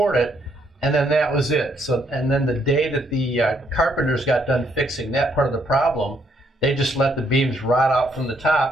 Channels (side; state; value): both; normal; correlation 0.71